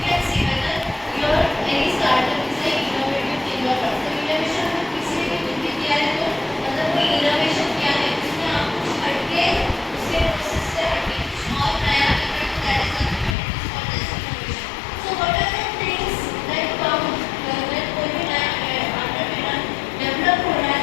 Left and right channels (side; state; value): right; drops out; at 13.4 s